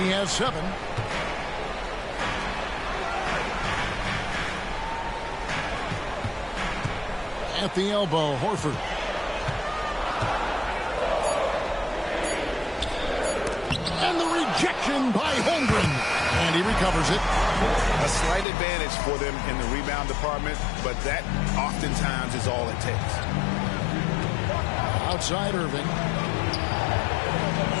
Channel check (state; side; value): drops out; right; at 18.4 s